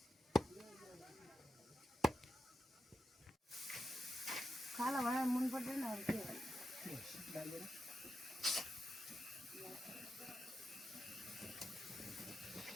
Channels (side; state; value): both; normal; correlation 0.88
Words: खाला भनेर मन पर्दैन अरू के डालेर